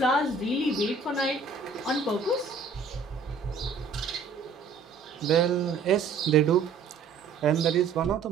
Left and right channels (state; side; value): quieter; left; 4.8 dB